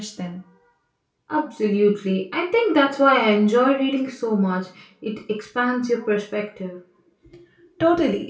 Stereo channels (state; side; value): identical; both; correlation 1.00